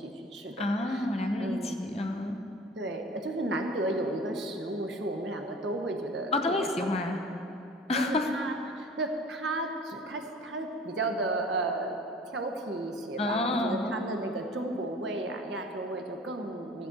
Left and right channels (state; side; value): normal; both; correlation 0.45